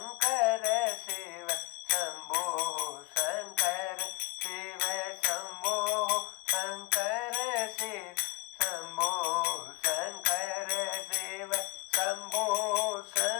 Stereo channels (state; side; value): quieter; right; 24.0 dB